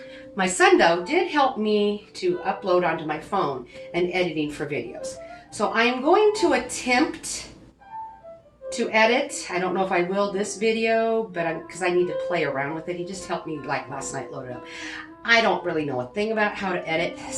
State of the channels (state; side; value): identical; both; correlation 1.00